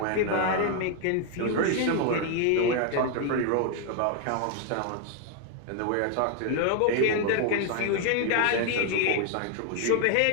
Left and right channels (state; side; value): different; both; correlation 0.01